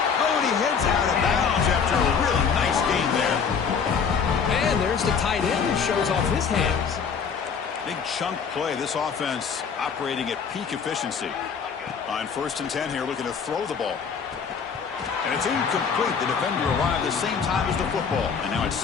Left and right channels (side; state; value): right; quieter; 6.4 dB